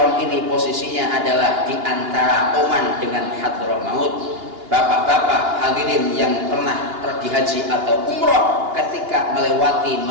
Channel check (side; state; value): left; late; 2.8 ms